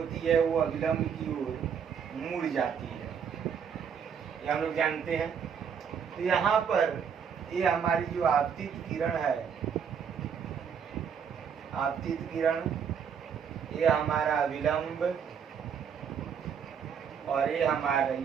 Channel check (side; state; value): left; quieter; 7.2 dB